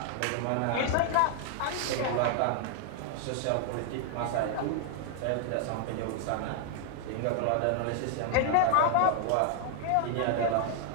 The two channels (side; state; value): both; different; correlation 0.00